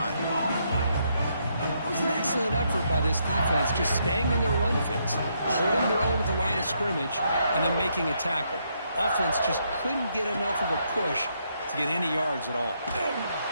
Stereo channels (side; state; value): both; inverted; correlation -0.76